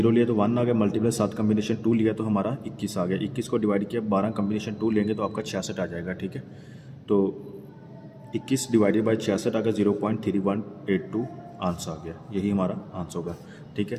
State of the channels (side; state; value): both; identical; correlation 1.00